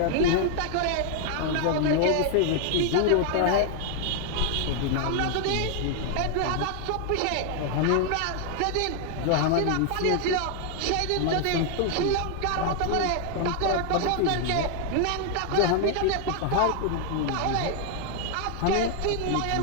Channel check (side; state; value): both; different; correlation 0.00